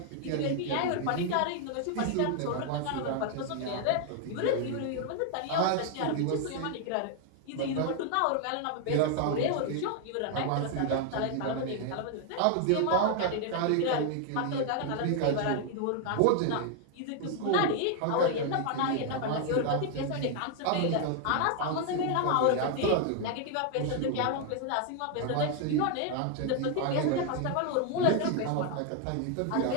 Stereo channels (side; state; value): both; different; correlation 0.00